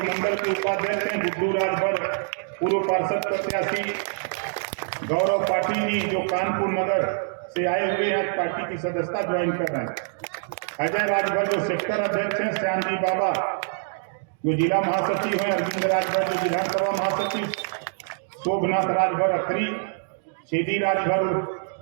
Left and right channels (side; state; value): left; silent; digital silence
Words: मंडल के उपाध्यक्ष हैं, गुड्डू राजभर पूर्व पार्षद प्रत्याशी, गौरव पाटिल जी जो कानपुर नगर से आए हुए हैं, पार्टी की सदस्यता ज्वाइन कर रहे हैं, अजय राजभर जो सेक्टर अध्यक्ष हैं, श्यामजी बाबा जो जिला महासचिव हैं, अरविंद राजभर जो विधानसभा महासचिव, शोभनाथ राजभर अखरी, सीधी राजभर